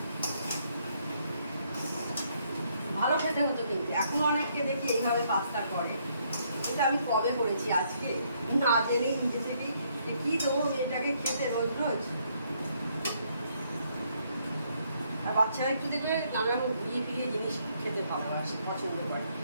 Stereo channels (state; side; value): inverted; both; correlation -0.71